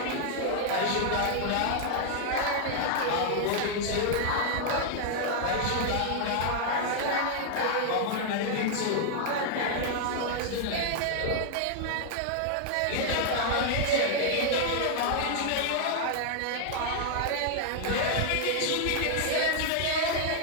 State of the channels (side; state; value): both; different; correlation 0.00